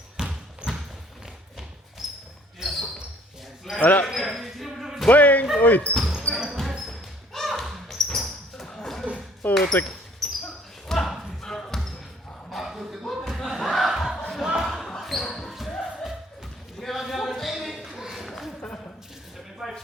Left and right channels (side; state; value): both; normal; correlation 0.58